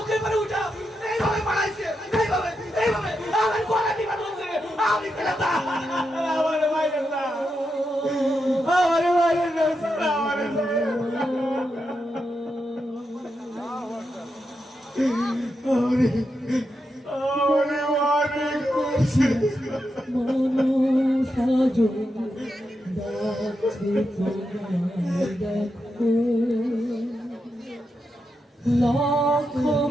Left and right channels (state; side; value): normal; both; correlation 0.86